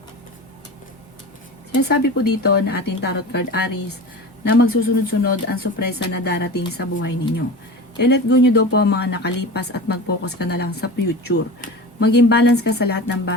Sinasabi po dito na ating tarot card Aries na magsusunod-sunod ang sorpresa na darating sa buhay ninyo. I-let go nyo daw po ang mga nakalipas at mag-focus ka na lang sa future. Maging balance ka sa lahat ng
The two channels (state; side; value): normal; both; correlation 0.32